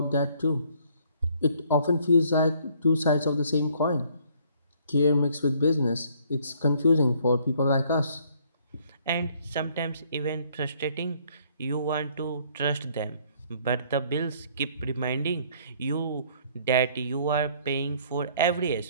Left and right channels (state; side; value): inverted; both; correlation -0.62